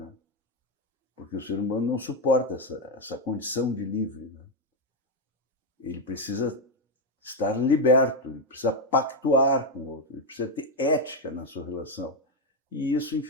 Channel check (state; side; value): normal; both; correlation 0.05